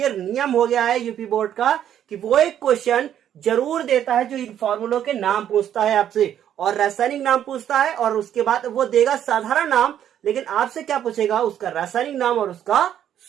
नियम हो गया है यूपी बोर्ड का कि वो एक क्वेश्चन जरूर देता है जो इन फॉर्मूलों के नाम पूछता है आपसे, और रासायनिक नाम पूछता है, और उसके बाद वो देगा साधारण नाम, लेकिन आपसे क्या पूछेगा? उसका रासायनिक नाम और उसका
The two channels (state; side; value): quieter; left; 10.3 dB